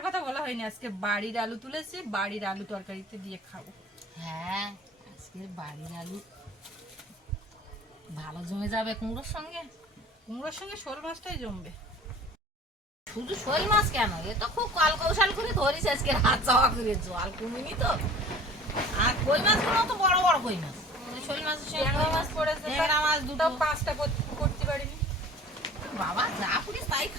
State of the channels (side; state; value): both; normal; correlation 0.44